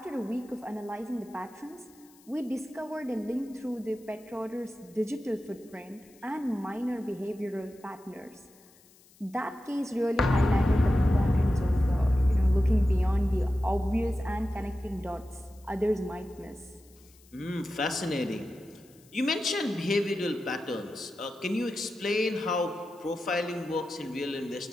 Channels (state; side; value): noise; left; hiss, 27 dB below the sound